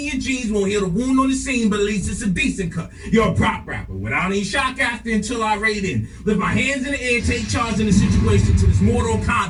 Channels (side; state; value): both; identical; correlation 1.00